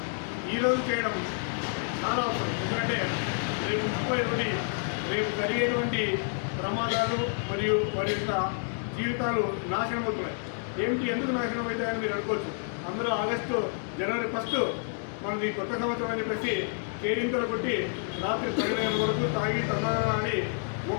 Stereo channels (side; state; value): right; silent; 59 dB below the other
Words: ఈరోజు చేయడం చాలా అవసరం. ఎందుకంటే రేపు 31 రేపు జరిగేటువంటి ప్రమాదాలు మరియు వారి యొక్క జీవితాలు నాశనం అవుతున్నాయి. ఏమిటి, ఎందుకు నాశనం అవుతాయని మీరు అనుకోవచ్చు. అందరూ జనవరి 1 మనది కొత్త సంవత్సరం అని చెప్పేసి కేరింతలు కొట్టి రాత్రి 12 గంటల వరకు తాగి తందనాడి